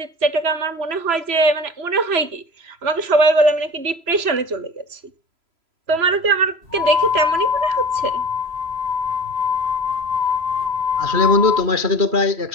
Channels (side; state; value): left; late; 3.0 ms